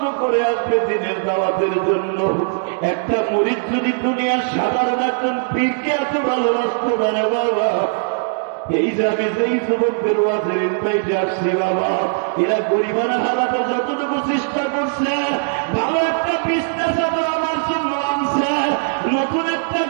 করে আসবে দিনের দাওয়াতের জন্য। একটা মুরিদ যদি দুনিয়ার সাধারণ একজন পীরকে এত ভালোবাসতে পারে বাবা, এই যাবে যেই যুবকদের ওয়াজের ইনভাইটে আসছি বাবা, এরা গরিবানা হালাতে যতটুকু চেষ্টা করছে, ভালো একটা বিছনা চাদর আমার জন্য আনছে, নতুন একটা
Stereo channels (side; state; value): left; silent; digital silence